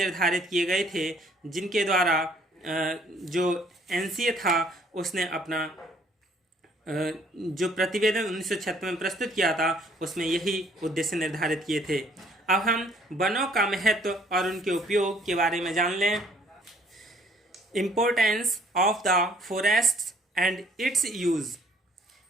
किए गए थे, जिनके द्वारा जो एनसीए था उसने अपना जो प्रतिवेदन 1976 में प्रस्तुत किया था उसमें यही उद्देश्य निर्धारित किए थे। अब हम वनों का महत्व और उनके उपयोग के बारे में जान लें। Importance of the forest and it's use.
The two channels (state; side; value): normal; both; correlation 0.61